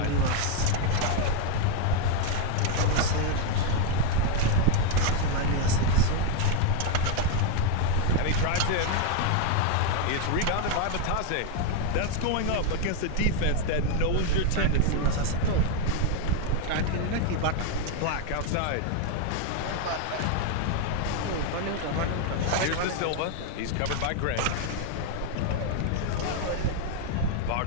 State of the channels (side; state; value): both; different; correlation 0.00